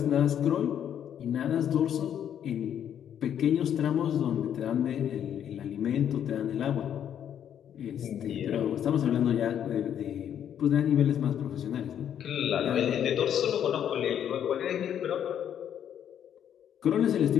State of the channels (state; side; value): quieter; right; 9.5 dB